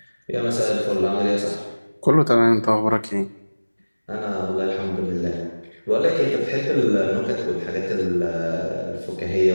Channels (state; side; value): inverted; both; correlation -1.00